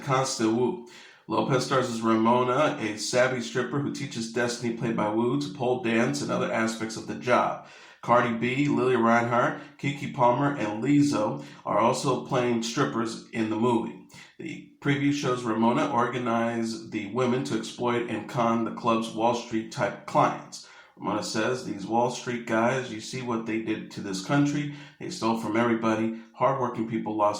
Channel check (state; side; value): identical; both; correlation 1.00